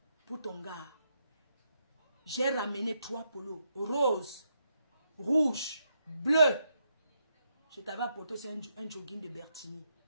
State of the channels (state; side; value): inverted; both; correlation -0.80